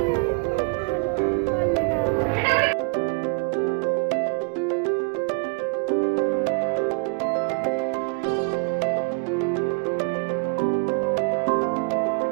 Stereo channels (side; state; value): left; quieter; 33.8 dB